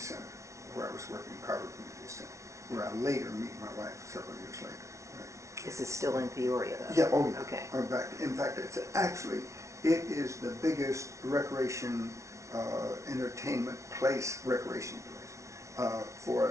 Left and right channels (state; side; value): late; left; 0.14 ms